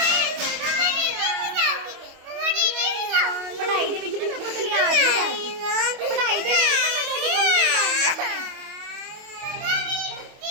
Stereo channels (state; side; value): late; left; 25 ms